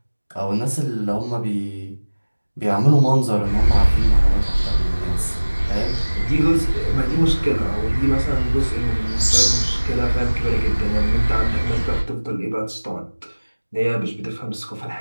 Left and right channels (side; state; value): both; inverted; correlation -1.00